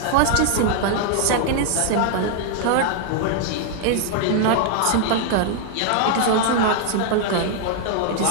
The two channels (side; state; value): both; different; correlation 0.00